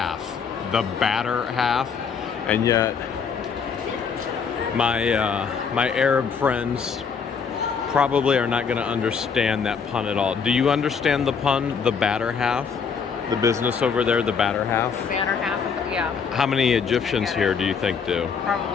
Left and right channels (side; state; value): right; quieter; 6.1 dB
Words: the batter half, and yet my Arab friends probably are not going to understand that pun at all. Do you understand the pun, the batter half? The business over there, the batter half? The batter half, yeah. How many Egyptians here do you think do?